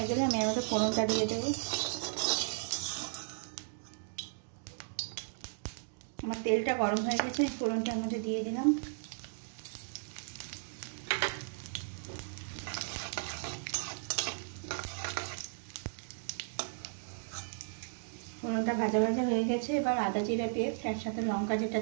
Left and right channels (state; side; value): silent; left; digital silence